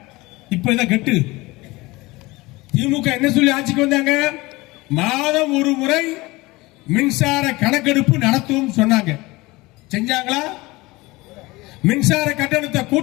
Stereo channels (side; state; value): right; quieter; 21.6 dB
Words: இப்ப இதை கட்டு. திமுக என்ன சொல்லி ஆட்சிக்கு வந்தாங்க? மாதம் ஒரு முறை மின்சார கணக்கெடுப்பு நடத்தும் சொன்னாங்க. செஞ்சாங்களா? மின்சார கட்டணத்தை